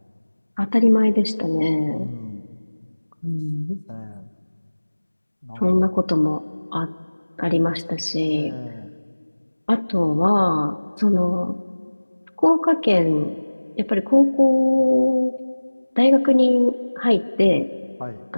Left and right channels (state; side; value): inverted; both; correlation -1.00